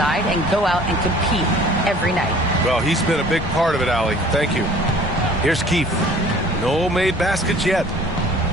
and go out and compete every night." Well, he's been a big part of it, Allie. Thank you. Here's Keith. No made baskets yet.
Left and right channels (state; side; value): normal; both; correlation 0.51